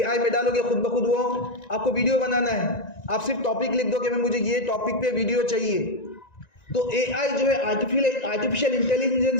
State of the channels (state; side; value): late; right; 1.9 ms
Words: में डालोगे, खुद ब खुद वो आपको वीडियो बनाना है। आप सिर्फ टॉपिक लिख दो कि मैं मुझे ये टॉपिक पे वीडियो चाहिए, तो एआई जो है, आर्टिफिशियल